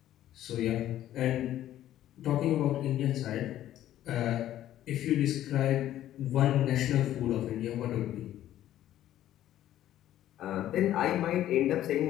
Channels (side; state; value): right; quieter; 12.7 dB